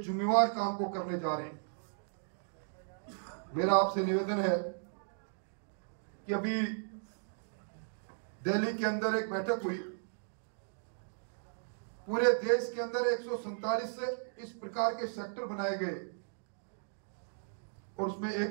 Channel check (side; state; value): left; silent; digital silence